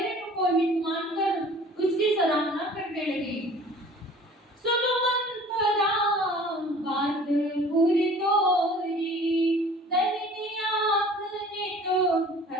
को हित मानकर उसकी सराहना करने लगी। सुनो मंथरा बात पूरी तोरी, दहिनी आँख ने तो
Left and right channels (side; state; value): both; normal; correlation 0.48